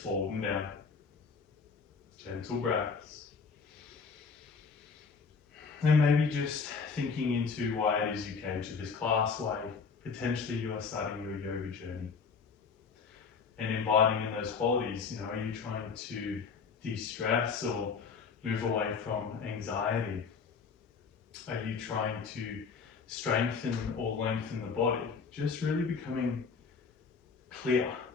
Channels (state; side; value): quieter; right; 5.3 dB